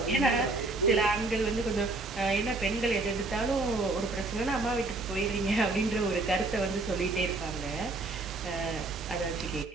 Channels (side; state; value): left; quieter; 3.2 dB